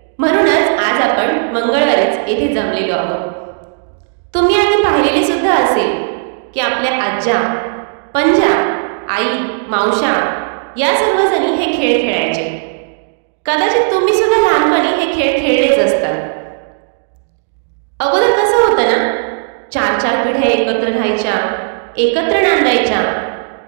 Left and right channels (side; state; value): left; silent; digital silence